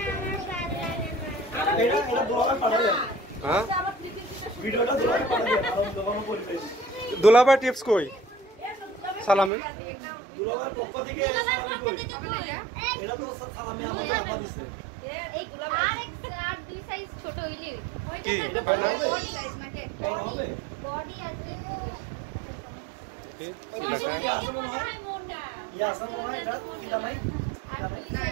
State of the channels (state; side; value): drops out; left; at 9.5 s